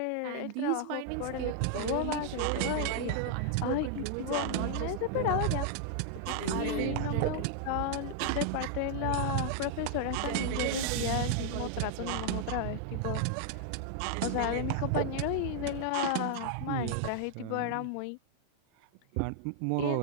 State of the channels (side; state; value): both; different; correlation -0.01